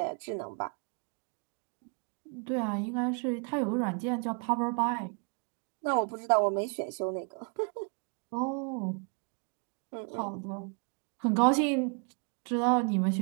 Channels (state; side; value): quieter; left; 39.4 dB